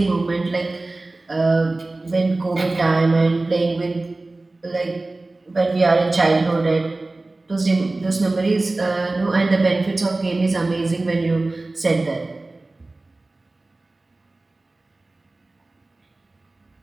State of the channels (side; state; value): left; quieter; 3.0 dB